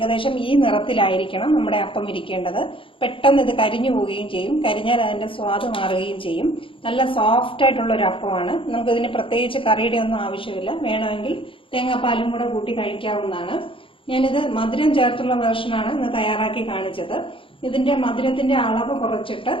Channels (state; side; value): late; right; 0.25 ms